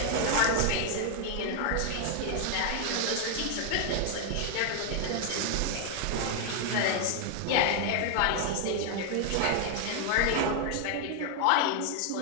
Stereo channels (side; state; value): both; different; correlation 0.00